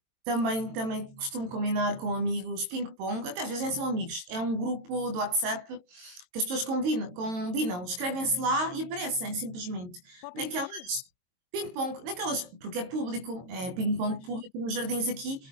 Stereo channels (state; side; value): late; left; 22 ms